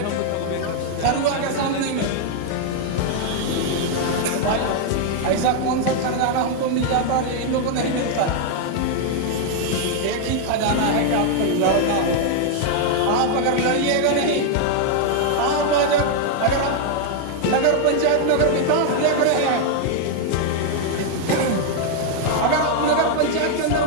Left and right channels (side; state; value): both; different; correlation 0.00